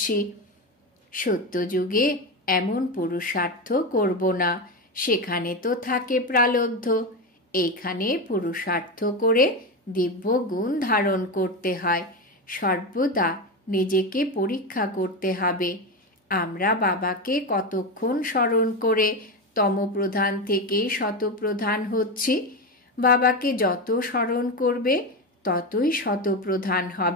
সত্যযুগে এমন পুরুষার্থ করব না, সেখানে তো থাকে প্রালব্ধ। এইখানে পুরুষার্থ করে দিব্য গুণ ধারণ করতে হয়। সর্বদা নিজেকে পরীক্ষা করতে হবে। আমরা বাবাকে কতক্ষণ স্মরণ করে তমপ্রধান থেকে শতপ্রধান হচ্ছি। বাবাকে যত স্মরণ করবে ততই শতপ্রধান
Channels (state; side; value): normal; both; correlation 0.17